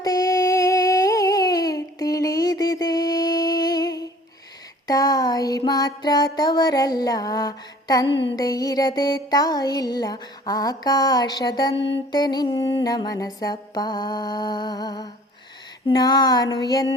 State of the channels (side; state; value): both; normal; correlation 0.51